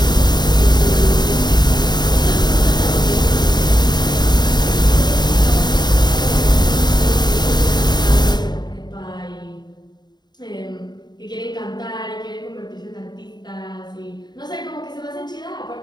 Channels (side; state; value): right; late; 0.21 ms